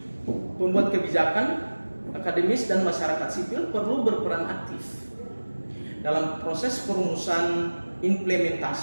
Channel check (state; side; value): inverted; both; correlation -1.00